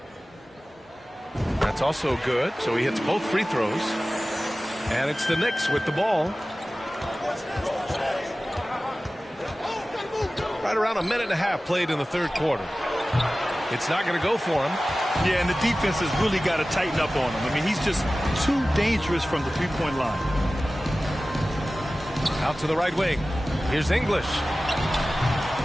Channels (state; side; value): normal; both; correlation 0.96